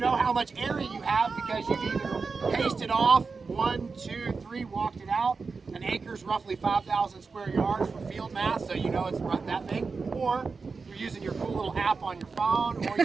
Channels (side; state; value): left; quieter; 4.6 dB